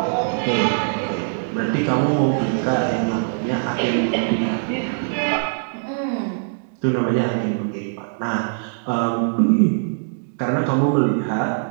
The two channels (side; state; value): left; silent; digital silence